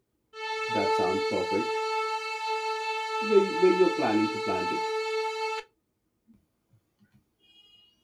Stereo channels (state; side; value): identical; both; correlation 1.00